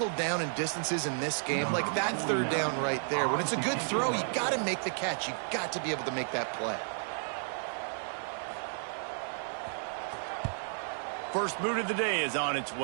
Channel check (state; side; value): silent; left; digital silence